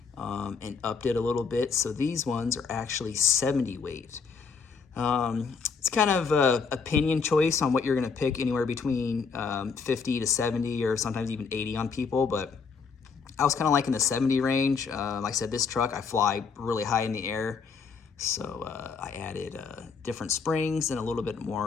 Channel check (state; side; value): quieter; right; 5.5 dB